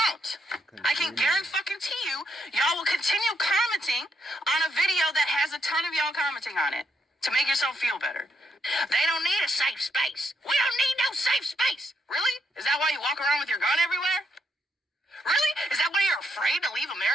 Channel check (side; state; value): both; normal; correlation 0.78